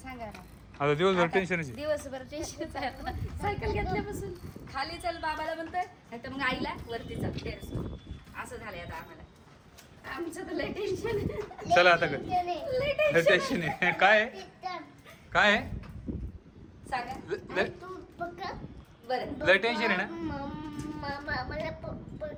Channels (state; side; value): identical; both; correlation 1.00